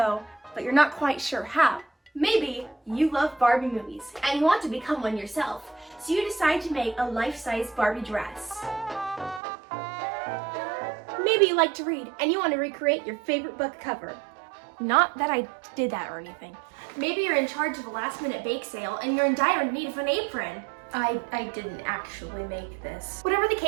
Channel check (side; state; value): left; drops out; at 9.4 s